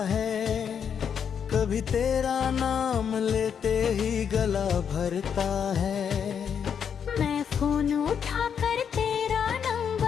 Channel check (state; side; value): quieter; right; 7.6 dB